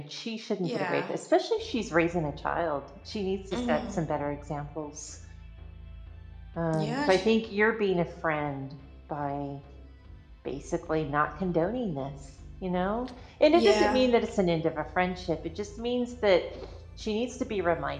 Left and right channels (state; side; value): identical; both; correlation 1.00